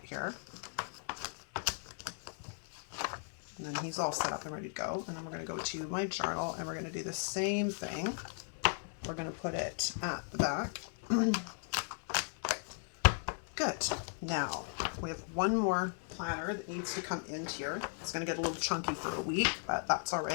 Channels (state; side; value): silent; right; 53 dB below the other